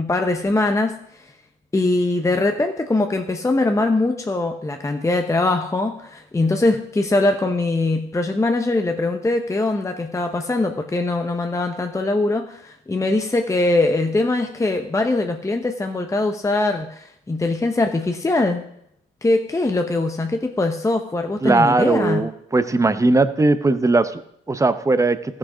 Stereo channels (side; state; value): both; normal; correlation 0.78